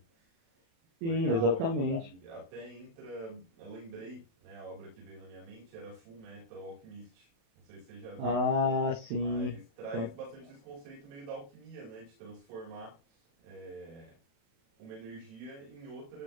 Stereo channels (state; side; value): late; left; 36 ms